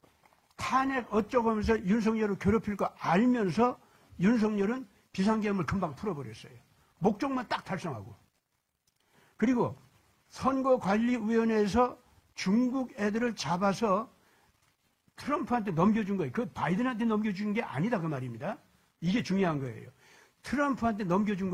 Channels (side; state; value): both; identical; correlation 1.00